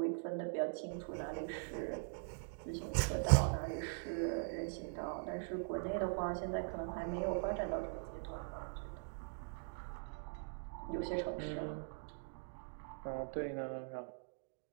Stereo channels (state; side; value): silent; left; digital silence